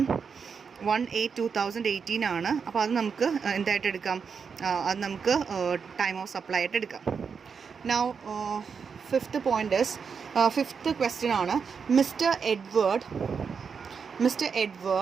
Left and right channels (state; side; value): quieter; left; 6.0 dB